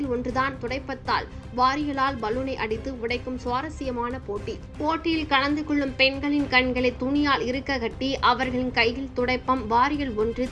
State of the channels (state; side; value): identical; both; correlation 1.00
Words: ஒன்றுதான் துடைப்பத்தால் வாரியலால் பலூனை அடித்து உடைக்கும் சுவாரஸ்யமான போட்டி. போட்டியில் கலந்து கொள்ளும் பெண்களின் கண்களை துணியால் இருக்க கட்டி அவர்களின் கையில் துடைப்பம் வாரியல் ஒன்று